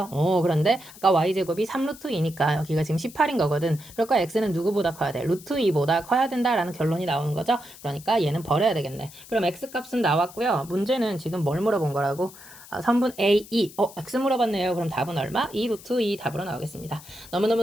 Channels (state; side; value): noise; left; hiss, 19 dB below the sound